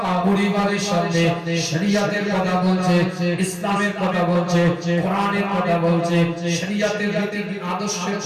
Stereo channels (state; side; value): identical; both; correlation 1.00